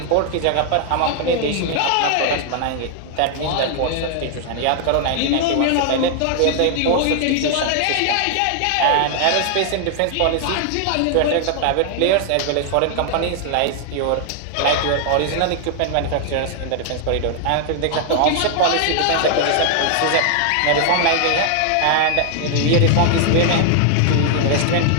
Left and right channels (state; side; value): different; both; correlation 0.00